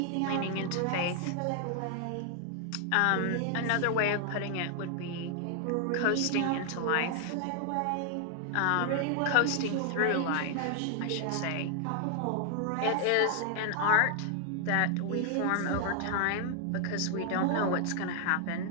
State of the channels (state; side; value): different; both; correlation 0.00